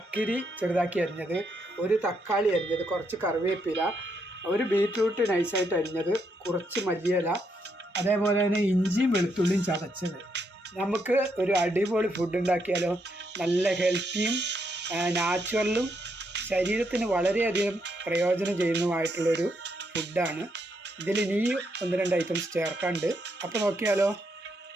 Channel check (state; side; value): normal; both; correlation 0.78